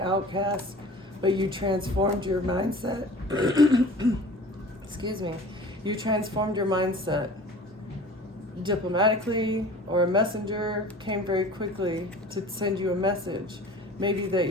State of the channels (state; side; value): normal; both; correlation 0.42